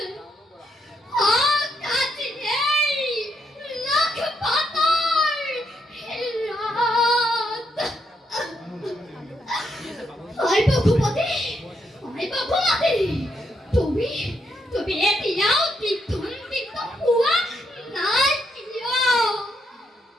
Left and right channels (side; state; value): both; normal; correlation 0.78